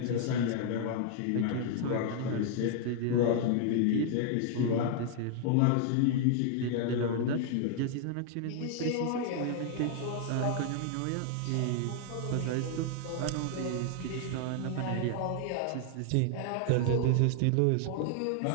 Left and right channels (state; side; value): different; both; correlation 0.00